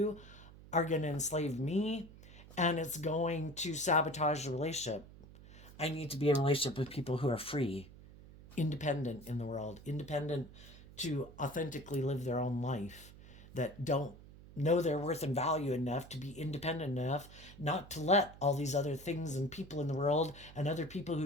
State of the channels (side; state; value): right; noise; hum, 18 dB below the sound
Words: are going to enslave me, and it's going to sabotage the relationship. I need to be in a relationship with people who are free, independent in the world, independent to authentically live their own life, that don't know their worth and value enough to be independent enough not to let all these other things and people in the world and other people who